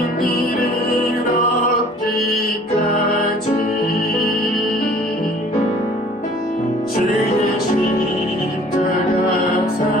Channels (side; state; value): both; normal; correlation 0.52